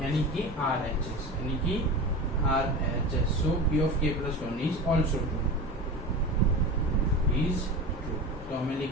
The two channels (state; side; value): normal; both; correlation 0.30